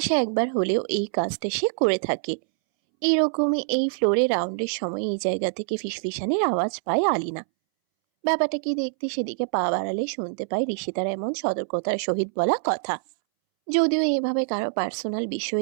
একবার হলেও এই কাজটা সে করে থাকে। এইরকমই এই ফ্লোরে রাউন্ডের সময় এই জায়গা থেকে ফিসফিসানির আওয়াজ পায় আলিনা। ব্যাপারটা কি দেখতে সেদিকে পা বাড়ালে শুনতে পায় ঋষিতার এমন সতর্কতার সহিত বলা কথা। যদিও এভাবে কারো পার্সোনাল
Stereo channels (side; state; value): left; silent; 62 dB below the other